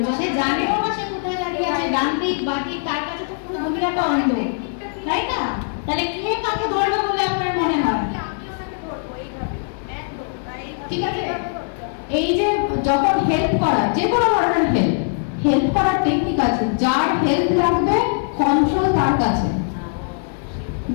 সে জানেও না সে কোথায় দাঁড়িয়ে আছে, ডান দিক বাঁ দিক, তার কাছে তো পুরো দুনিয়াটা অন্ধ, তাই না? তাহলে কে কাকে ধরবে বলে আপনার মনে হয়? ঠিক আছে? এই যে যখন হেল্প করা, যে কোনো ধরনের হেল্প করার টেকনিক আছে। যার হেল্প লাগবে কন্ট্রোল তার কাছে,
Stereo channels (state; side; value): silent; right; digital silence